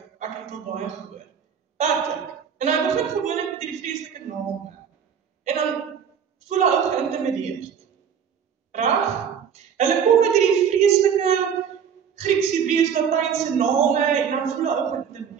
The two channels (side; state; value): left; quieter; 7.6 dB